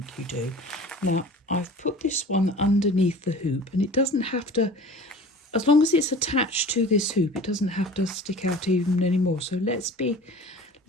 you do. Now, I've put this one underneath the hoop, and it doesn't have to, as long as it's attached to this hoop, it doesn't have to stick out even anymore. So let's be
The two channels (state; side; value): normal; both; correlation 0.41